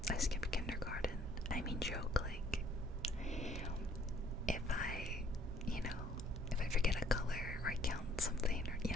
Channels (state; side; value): normal; both; correlation 0.61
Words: I skipped kindergarten. I mean, joke, like, if I forget a color or I count something, or, you